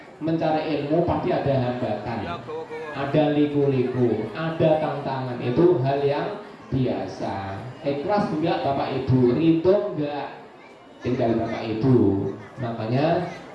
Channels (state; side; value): identical; both; correlation 1.00